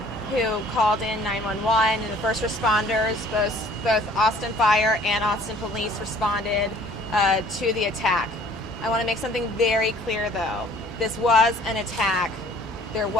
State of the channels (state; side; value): normal; both; correlation 0.54